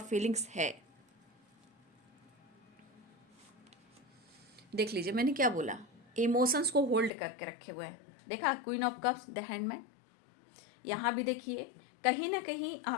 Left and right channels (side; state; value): right; drops out; at 7.1 s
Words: फीलिंग्स है। देख लीजिए मैंने क्या बोला, इमोशंस को होल्ड करके रखे हुए हैं। देखा, queen of cups, the handman. यहाँ भी देखिए कहीं ना कहीं